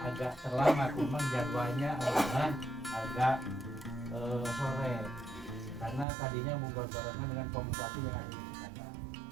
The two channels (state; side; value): drops out; left; at 6.1 s